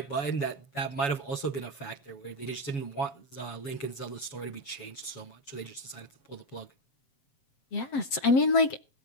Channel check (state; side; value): late; right; 7.1 ms